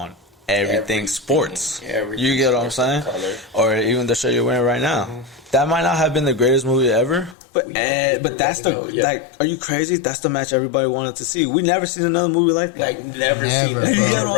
everything sports. You get what I'm saying? Color. Or even the shirt you're wearing right now. Mm-hmm. That might not have been the greatest movie ever, but that's are you crazy? That's the match everybody wanted to see. We never seen another movie like that. Like never seen that. You get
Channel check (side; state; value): right; drops out; at 7.4 s